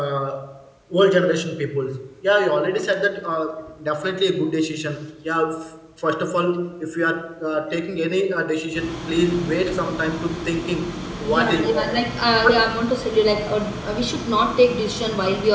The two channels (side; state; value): both; identical; correlation 1.00